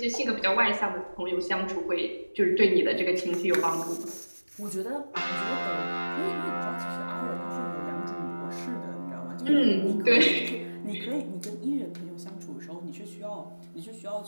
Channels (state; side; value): inverted; both; correlation -1.00